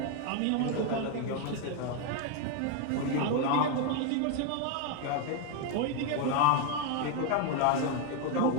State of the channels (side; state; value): both; different; correlation 0.01